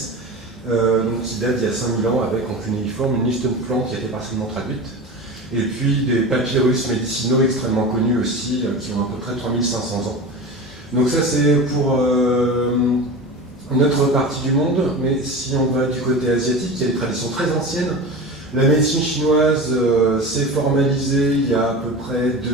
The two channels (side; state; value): both; normal; correlation 0.30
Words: qui date d'il y a 5000 ans, avec en cunéiforme une liste de plantes qui a été partiellement traduite. Et puis des papyrus médicinaux extrêmement connus aussi, qui ont à peu près 3500 ans. Donc ça c'est pour notre partie du monde, mais si on va du côté asiatique, il y a des traditions très anciennes. La médecine chinoise s'est formalisée il y a à peu près